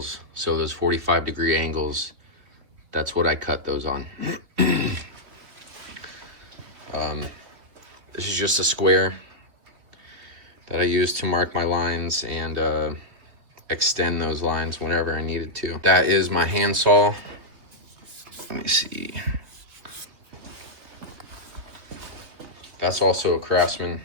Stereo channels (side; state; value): left; late; 3.4 ms